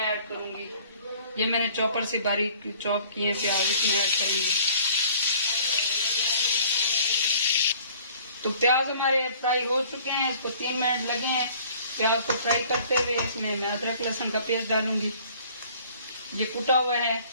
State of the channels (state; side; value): inverted; both; correlation -0.53